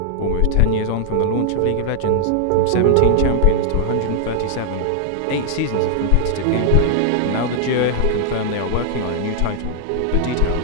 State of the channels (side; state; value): both; different; correlation 0.00